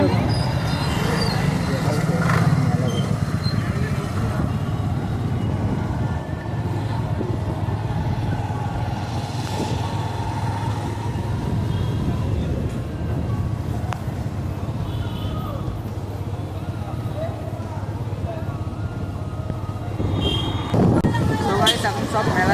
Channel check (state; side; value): identical; both; correlation 1.00